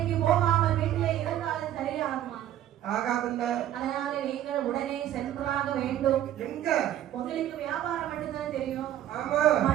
போகாமல் வீட்டிலே இருந்தாலும் சரியாகுமா? ஆகாதுல்ல. அதனால நீங்கள் உடனே சென்றாக வேண்டும். எங்க? உங்களுக்கு வியாபாரம் மட்டும்தான் தெரியும். ஆமா.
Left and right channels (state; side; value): quieter; left; 11.9 dB